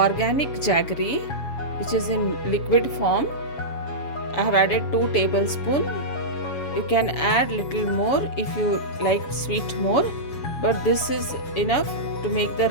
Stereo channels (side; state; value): right; late; 7.2 ms